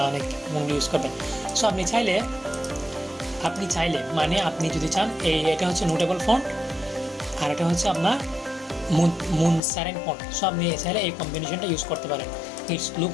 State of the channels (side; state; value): right; drops out; at 9.6 s